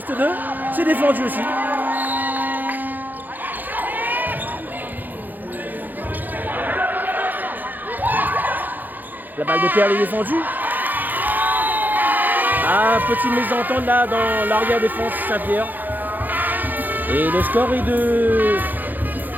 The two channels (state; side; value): late; left; 0.086 ms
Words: 2. C'est défendu aussi. La balle de Perle est défendue. Ah, petite mésentente là dans l'arrière défense Saint-Pierre. Et le score est de